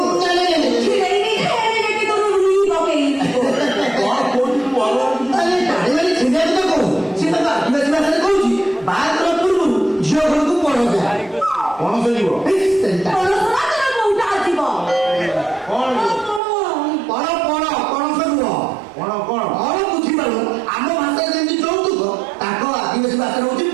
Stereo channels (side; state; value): left; drops out; at 16.4 s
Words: ছিড়াই নি দেখে তোর রুই বকেই କଣ କହୁଛୁ ଭଲ ଟାଣିମାନେ ଛିଣ୍ଡିଆ କଥା କହୁ ସେ ତାକୁ ଆଦିବାସୀ ଭାଷାରେ କହୁଛି ବାହାଘର ପୂର୍ବରୁ ଝିଅ ଘରକୁ ପଣସ ପଣସ ଯିବ ପଣସରା ତୋର କୋଉଟା ଆସିବ କଣ ପଣସ ନୁହଁ କଣ କଣ କଣ ବୁଝିପାରୁ ଆମ ଭାଷାରେ ଯେମିତି ଯୌତୁକ ତାଙ୍କ ଆଦିବାସୀ ଭାଷାରେ ହଉଛି